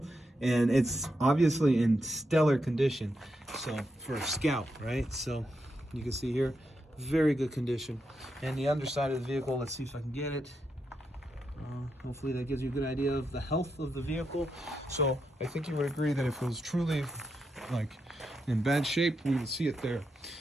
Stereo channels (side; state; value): both; normal; correlation 0.84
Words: And it's obviously in stellar condition. So for a Scout, right? So you can see here, very good condition. And the underside of the vehicle, let's see if I can get it. Hopefully that gives you a good idea of the health of the vehicle. So I think you would agree that if it was truly like in bad shape, we would see it there.